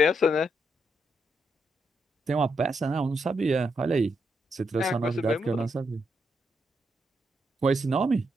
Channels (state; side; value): normal; both; correlation 0.80